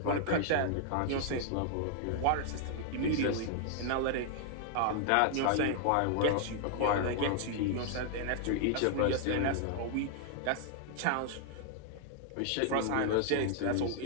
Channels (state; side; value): different; both; correlation 0.00